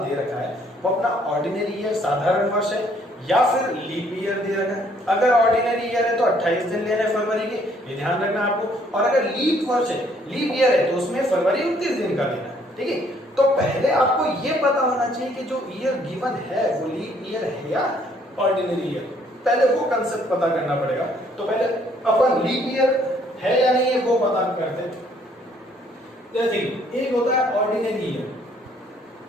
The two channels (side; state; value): both; normal; correlation 0.64